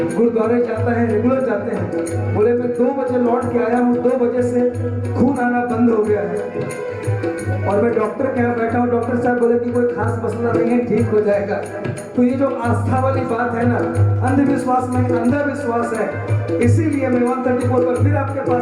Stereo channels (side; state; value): both; identical; correlation 1.00